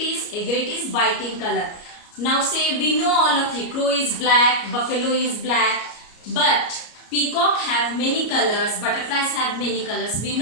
Egret is white in color. Now say, we know all of you, crow is black, buffalo is black, but peacock have many colors, butterflies have many colors. We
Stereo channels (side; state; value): right; late; 34 ms